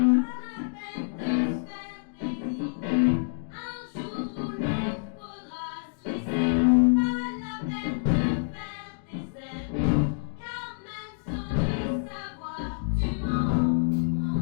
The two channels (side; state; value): right; silent; digital silence